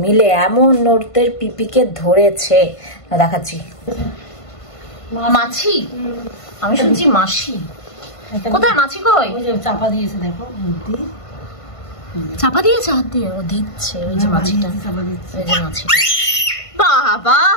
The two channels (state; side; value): late; right; 1.5 ms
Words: মিলে এমন ওদের পিপিকে ধরেছে, দেখাচ্ছি। মাছি? আমি শুনছি মাসি। কোথায় মাছি? কই? চাপা দিয়েছে, দেখো চাপা দিয়েছে হাত দিয়ে। ও দিচ্ছে ওই যে মাছিটা, ওই যে মাছিটা। বাবা